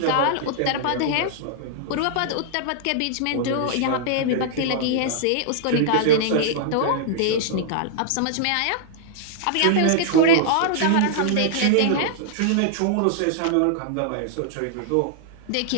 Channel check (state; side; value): different; both; correlation -0.01